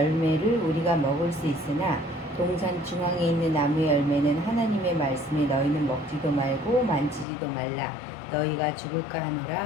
우리가 먹을 수 있으나 동산 중앙에 있는 나무의 열매는 하나님의 말씀에 너희는 먹지도 말고 만지지도 말라. 너희가 죽을까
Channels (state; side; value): drops out; right; at 7.2 s